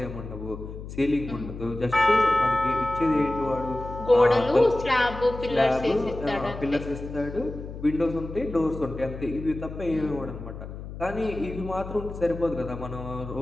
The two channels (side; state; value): left; noise; hum, 11 dB below the sound